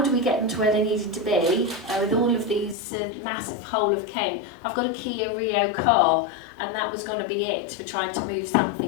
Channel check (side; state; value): right; drops out; at 2.8 s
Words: we get them to where they needed to be with all of these massive whole of Kent? I've got a Kia Rio car, and that was going to be it for trying to move